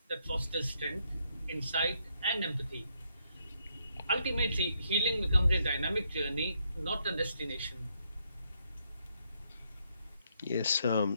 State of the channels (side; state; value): both; inverted; correlation -0.75